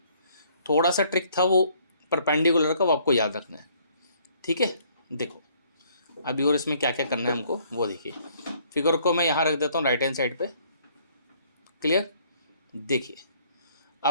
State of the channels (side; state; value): both; inverted; correlation -0.63